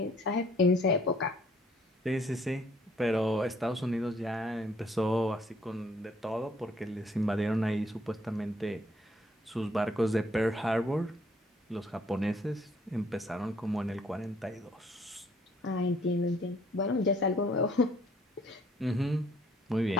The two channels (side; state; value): both; normal; correlation 0.63